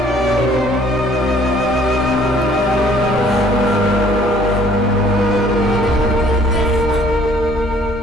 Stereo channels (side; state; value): both; normal; correlation 0.58